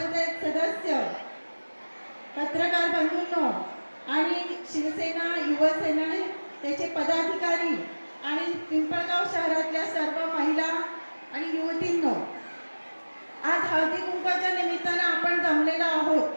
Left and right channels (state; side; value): inverted; both; correlation -1.00